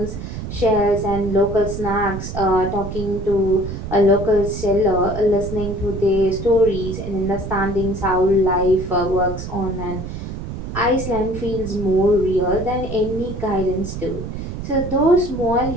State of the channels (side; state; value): right; noise; rumble, 7 dB below the sound